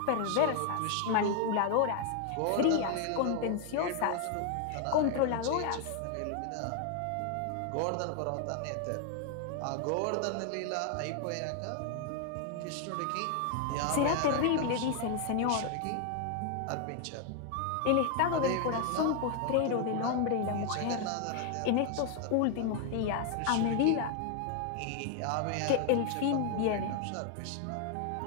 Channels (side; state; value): both; different; correlation 0.00